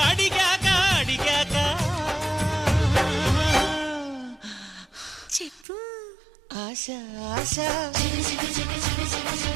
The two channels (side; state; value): left; drops out; at 5.7 s